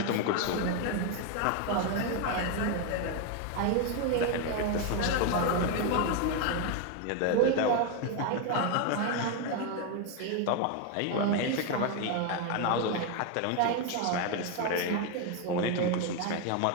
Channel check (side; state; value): both; different; correlation 0.01